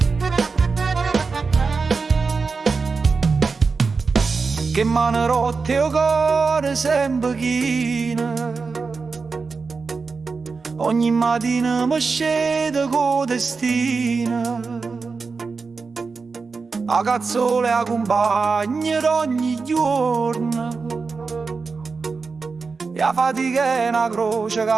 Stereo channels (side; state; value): left; quieter; 4.6 dB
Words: mano rotte o cuore sempre china, ogni mattina mi scende con destina, a cazzole a compagni ogni giorno, e la fatica è una croce